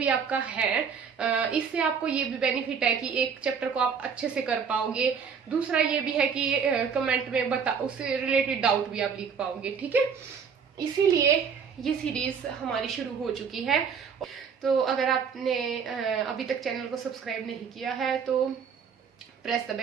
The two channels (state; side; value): quieter; left; 6.5 dB